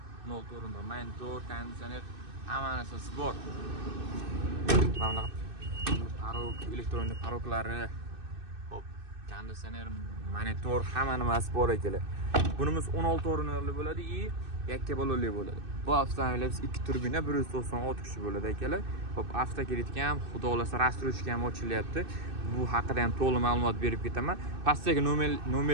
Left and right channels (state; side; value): late; left; 2.6 ms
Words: 16 o'rinli, monitor, konditsioner, hamma narsasi bor. Mana parok, elektronik paroklari, hop, konditsioner, monitor, hamma nimasi bor akalar. Bunimiz 16 o'rinli bo'ladi и yakka balonli bo'ladi. Bu avtomobilimiz 2 turbina 196 kishi bo'ladi akalar. Hop, avtokreditga ham, xudo xolasa rastrochka ham ochilyapti. Bu haqida ham to'liq ma'lumot berib ketaman. Pastdagi